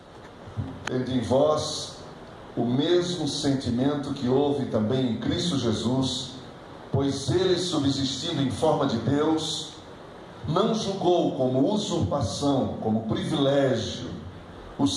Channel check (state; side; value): identical; both; correlation 1.00